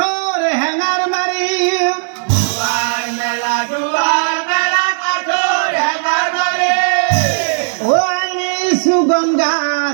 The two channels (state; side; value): silent; left; digital silence